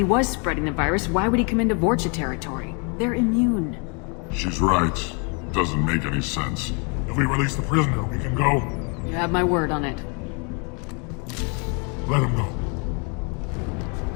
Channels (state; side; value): quieter; right; 35.0 dB